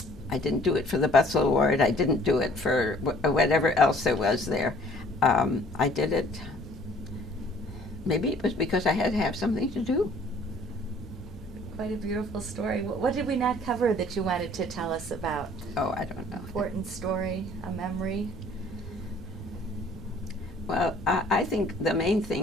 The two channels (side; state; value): both; normal; correlation 0.55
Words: I didn't do it for the Butzel Award. I didn't do it for whatever else there was there. I did it. Maybe it was because I had to have something to do. Quite a beautiful story. What did we not cover that you wanted to tell us about? Oh, I don't know. Important story, a memory? Well, I think the main